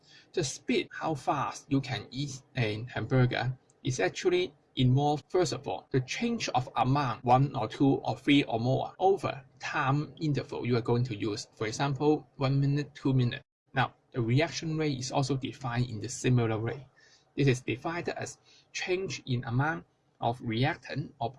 the speed, how fast you can eat a hamburger, is actually involve, first of all, the change of amount 1 or 2 or 3 or more over time interval you are going to use. For example, 1 minute, 2 minutes. Now, the reaction rate is also defined in the similar way. This is defined as change in amount of reactant or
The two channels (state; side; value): identical; both; correlation 1.00